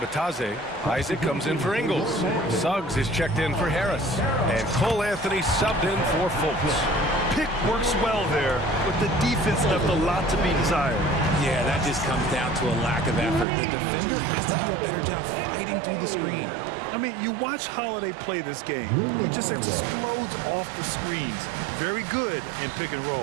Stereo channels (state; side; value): drops out; left; at 13.5 s